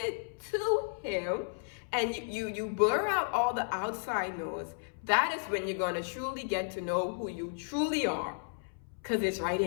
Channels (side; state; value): right; silent; 56 dB below the other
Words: to him and you blur out all the outside noise, that is when you're going to truly get to know who you truly are, because it's right